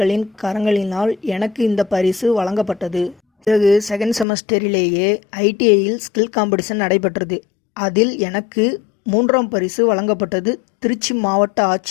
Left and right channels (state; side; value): drops out; right; at 4.2 s